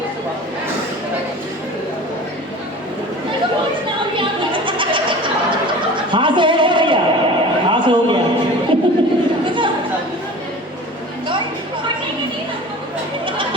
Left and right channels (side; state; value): both; normal; correlation 0.39